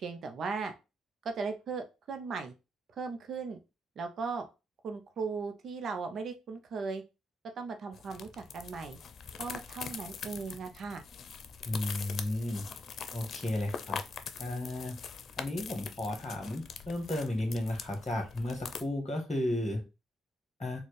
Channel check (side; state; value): both; normal; correlation 0.81